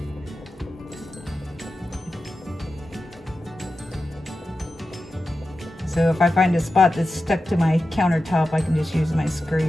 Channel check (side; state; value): both; normal; correlation 0.92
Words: So if I find a spot that's stuck to my countertop, I can just use my